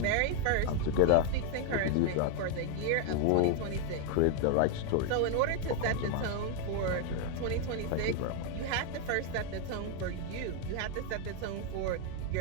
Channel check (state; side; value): different; both; correlation 0.01